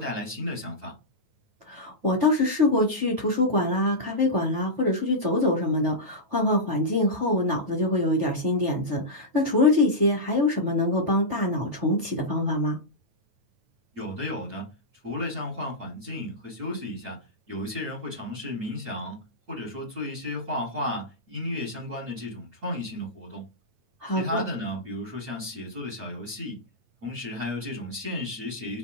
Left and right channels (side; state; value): left; late; 9.2 ms